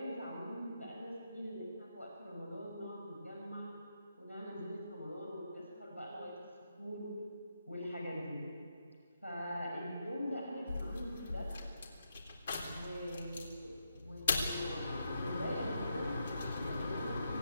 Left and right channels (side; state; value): both; inverted; correlation -0.82